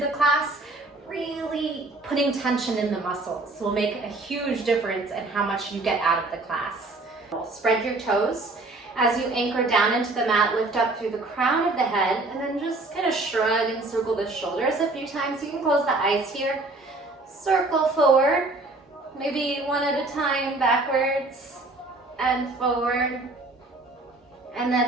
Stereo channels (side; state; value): left; quieter; 3.1 dB